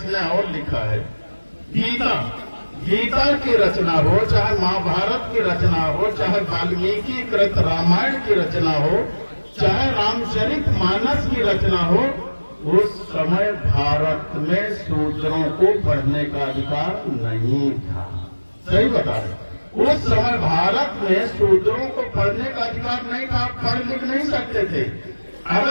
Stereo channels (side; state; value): both; inverted; correlation -1.00